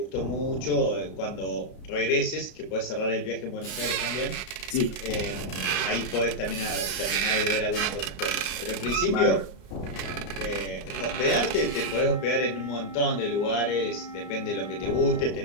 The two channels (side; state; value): right; late; 32 ms